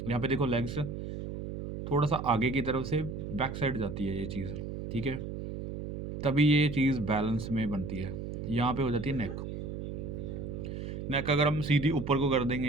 यहाँ पे देखो लेग्स थोड़ा-सा आगे की तरफ से बैक साइड जाती है ये चीज़, ठीक है? तभी ये चीज़ बैलेंस में बनती है। यहाँ पे हो जाती है नेक। नेक अगर हम सीधी ऊपर को कर देंगे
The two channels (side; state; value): right; noise; hum, 6 dB below the sound